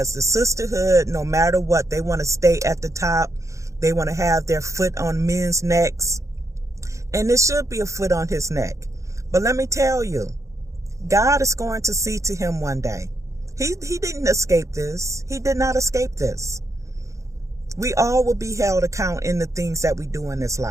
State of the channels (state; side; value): late; left; 0.15 ms